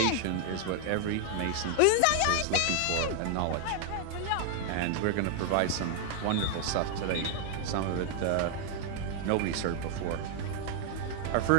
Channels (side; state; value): both; different; correlation 0.00